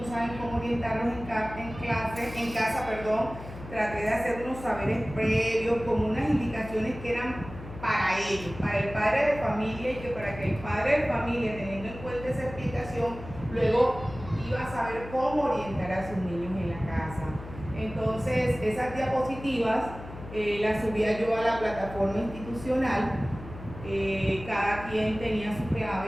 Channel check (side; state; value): left; noise; hum, 13 dB below the sound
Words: saben cómo orientarlos en casa, traté de hacer unos saberes previos, como unas indicaciones que eran para ellos, para el padre de familia, y que para que el padre de familia, teniendo en cuenta esa explicación, luego iba a saber cómo orientar a sus niños en la casa. Entonces, esas diapositivas las subía yo a la plataforma institucional, cada quien tenía su